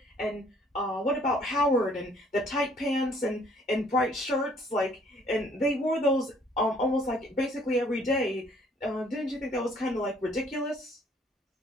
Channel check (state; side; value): normal; both; correlation 0.61